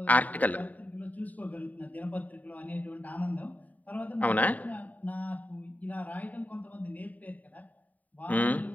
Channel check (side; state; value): right; late; 0.074 ms